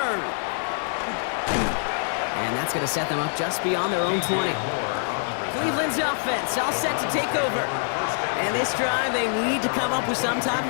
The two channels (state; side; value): silent; right; 62 dB below the other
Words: And that's going to set them up just beyond their own 20. Cleveland's offense all set to take over. And this drive, they need to come up with some type